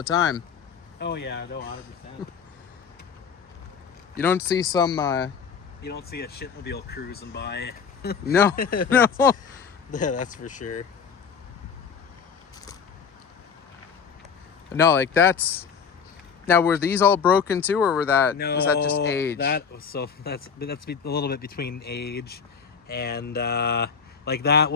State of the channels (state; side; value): quieter; right; 6.4 dB